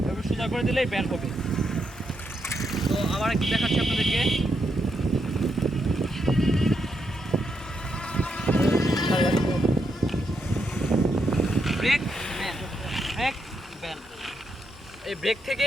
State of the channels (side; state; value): both; normal; correlation 0.81